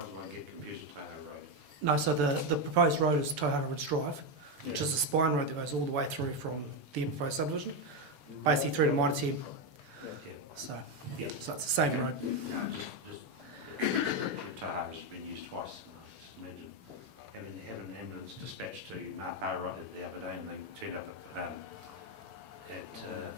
won't get confused with Tauhara Road. No, so the proposed road is Tauhara Ridge Drive, which Yeah. is a spine road that goes all the way through from the proposed subdivision, basically through to Mitre 10. Yeah. So, Yeah. so it's the same Okay. road. No, just Tauhara's been used twice. Just imagine having an ambulance dispatched to Mapara the other day and they turned up at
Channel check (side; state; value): left; late; 6.9 ms